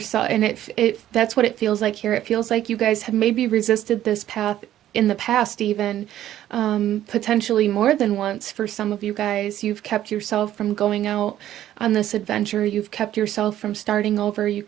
and it that's what it feels like here. It feels like you guys have maybe resisted this path in the past, even potentially more than once. For some of you guys, you've kept yourself from going out on this adventure. You've kept yourself from starting over. You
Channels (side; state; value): left; quieter; 12.4 dB